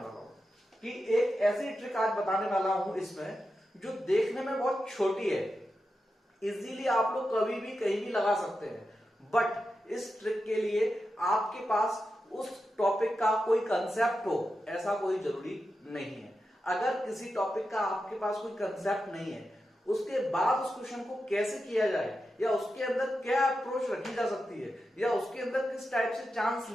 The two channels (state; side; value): normal; both; correlation 0.89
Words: वाला हूं कि एक ऐसी ट्रिक आज बताने वाला हूं इसमें जो देखने में बहुत छोटी है, इजीली आप लोग कभी भी कहीं भी लगा सकते हैं, बट इस ट्रिक के लिए आपके पास उस टॉपिक का कोई कंसेप्ट हो ऐसा कोई जरूरी नहीं है। अगर किसी टॉपिक का आपके पास कोई कंसेप्ट नहीं है, उसके बाद उस क्वेश्चन को कैसे किया जाए, या उसके अंदर क्या अप्रोच रखी जा सकती है, या उसके अंदर किस टाइप से चांस